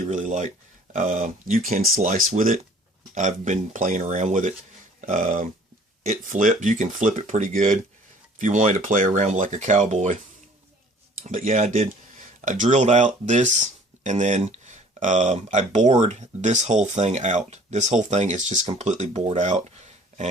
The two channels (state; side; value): normal; both; correlation 0.53